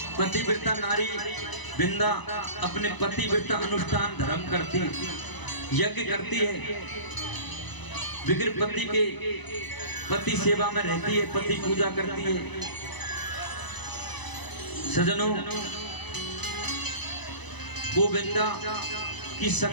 पतिव्रता नारी बिंदा अपने पतिव्रता अनुष्ठान धर्म करती है, यज्ञ करती है, बिगड़ पति के पति सेवा में रहती है, पति पूजा करती है। सजनों, वो बिंदा की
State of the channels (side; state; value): right; late; 1.0 ms